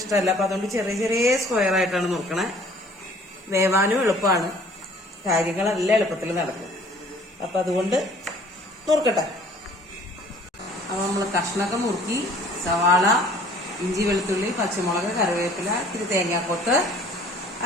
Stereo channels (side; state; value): both; normal; correlation 0.54